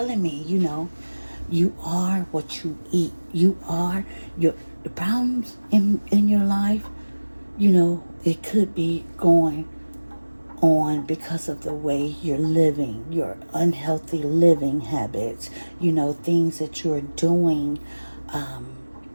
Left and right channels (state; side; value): inverted; both; correlation -1.00